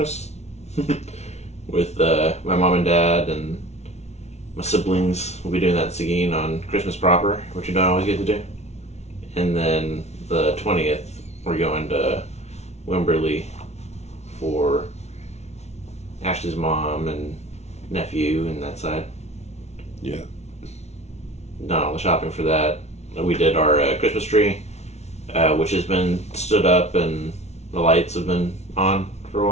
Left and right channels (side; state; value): right; late; 0.32 ms